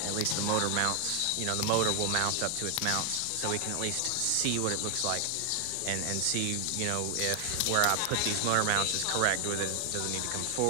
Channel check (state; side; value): different; both; correlation 0.00